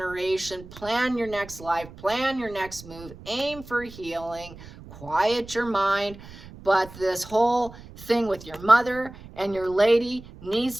Plan your next life. Plan your next move. Aim for healing. Quiet your mind. But this whole thing with your mother and your lady needs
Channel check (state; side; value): noise; right; rumble, 17 dB below the sound